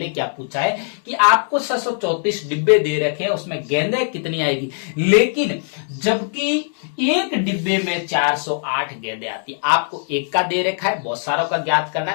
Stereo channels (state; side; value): silent; right; digital silence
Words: क्या पूछा है कि आपको 634 डिब्बे दे रखे हैं, उसमें गेंदें कितनी आएगी। लेकिन जबकि एक डिब्बे में 408 गेंदें आती है, आपको एक का दे रखा है, बहुत सारों का ज्ञात करना